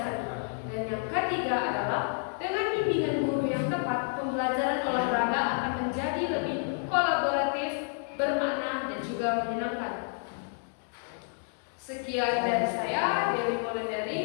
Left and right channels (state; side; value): silent; right; 58 dB below the other